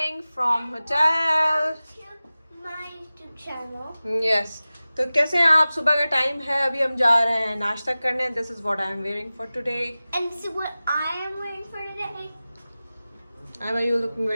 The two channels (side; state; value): both; inverted; correlation -0.97